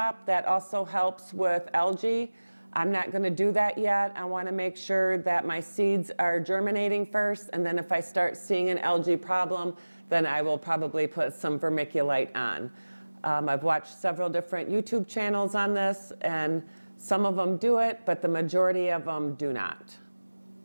That also helps with algae. I'm not going to do that yet. I want to make sure that my seeds are germinating first, and then if I start seeing an algae problem, then I will probably put some vermiculite on. I've watched several different YouTube channels on this, and some of them do it, but the majority of them do not.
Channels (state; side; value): inverted; both; correlation -1.00